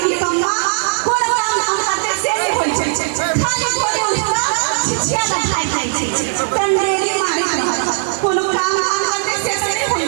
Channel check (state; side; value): silent; left; digital silence